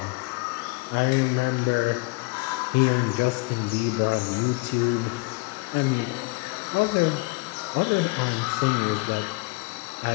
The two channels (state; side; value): quieter; right; 26.8 dB